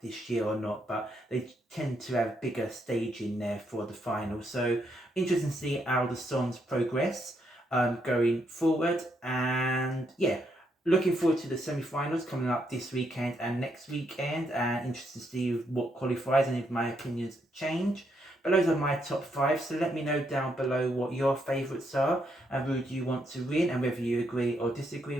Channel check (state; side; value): normal; both; correlation 0.77